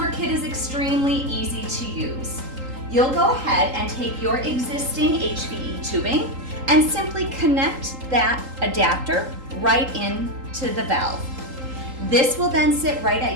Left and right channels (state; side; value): late; left; 3.8 ms